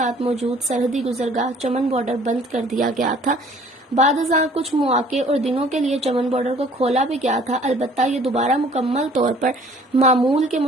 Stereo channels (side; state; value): both; normal; correlation 0.54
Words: موجود سرحدی گزرگاہ چمن بارڈر بند کر دیا گیا تھا۔ بعد ازاں کچھ مواقع اور دنوں کے لیے چمن بارڈر کو کھولا بھی گیا تھا، البتہ یہ دوبارہ مکمل طور پر معمول کے